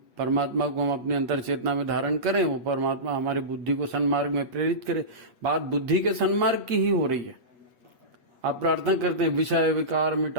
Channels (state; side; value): late; left; 8.0 ms